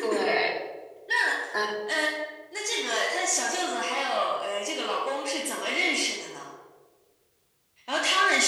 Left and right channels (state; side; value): identical; both; correlation 1.00